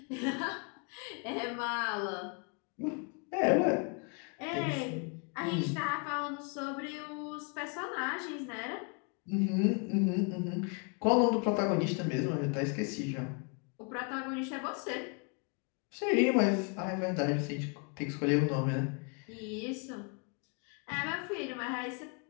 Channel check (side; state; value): right; quieter; 36.0 dB